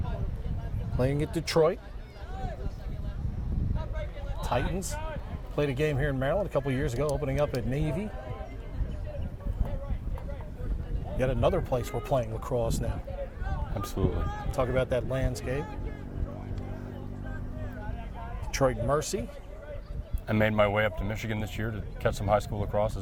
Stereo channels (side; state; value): both; identical; correlation 1.00